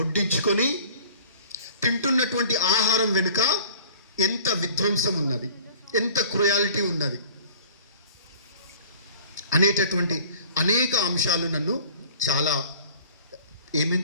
తింటున్నటువంటి ఆహారం వెనుక ఎంత విధ్వంసం ఉన్నది, ఎంత క్రుయాలిటీ ఉన్నది అనేటటువంటి అనేక అంశాలు నన్ను చాలా ఏమేం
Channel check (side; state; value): both; inverted; correlation -0.47